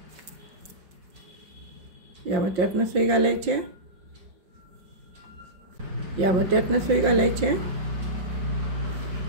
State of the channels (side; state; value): left; late; 5.6 ms